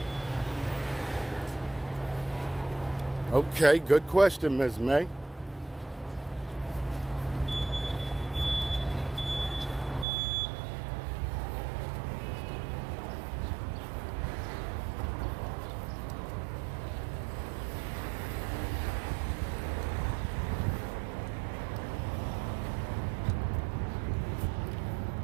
Okay, good question, Ms. May.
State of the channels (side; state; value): left; drops out; at 10.1 s